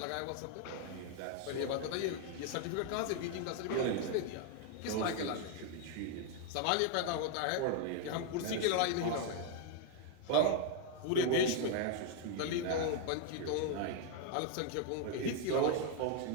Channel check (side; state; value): both; different; correlation 0.00